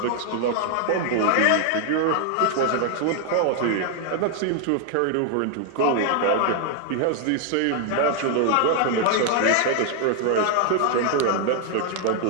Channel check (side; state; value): both; different; correlation 0.00